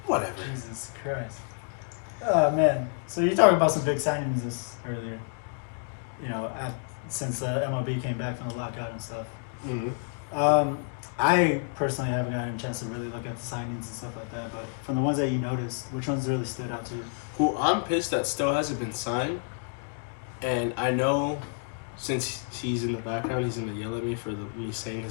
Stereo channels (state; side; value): silent; right; 58 dB below the other